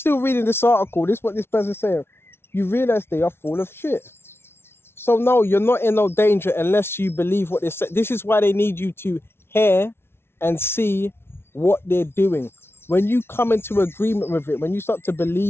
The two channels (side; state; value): right; late; 0.12 ms